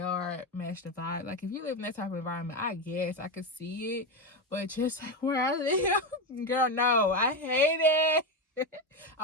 match the vibe. Like, if you live in that type of environment, I guess I could see it. But just like where I live, girl, no, I hate it.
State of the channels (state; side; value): normal; both; correlation 0.13